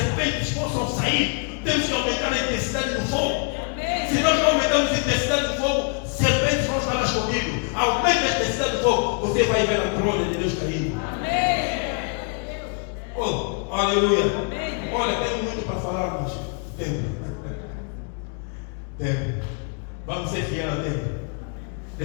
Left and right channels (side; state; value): right; quieter; 39.4 dB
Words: possam sair. Temos que aumentar a intensidade do fogo. Se nós não aumentarmos a intensidade do fogo, serpentes vão estar escondidos. Aumenta a intensidade do fogo, você vai ver a glória de Deus caindo. Oh, aleluia. Olha, tenho muito para falar, mas tempo. Vamos ser fiéis ao tempo.